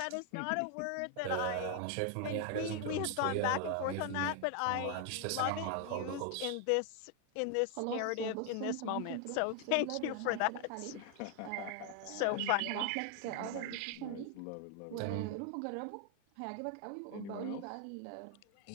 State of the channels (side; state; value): both; different; correlation 0.00